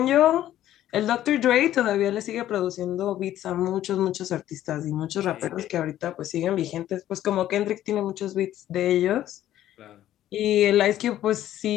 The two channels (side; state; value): right; quieter; 12.7 dB